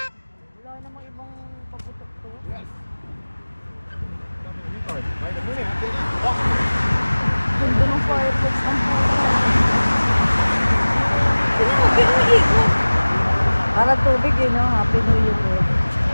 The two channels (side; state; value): both; inverted; correlation -1.00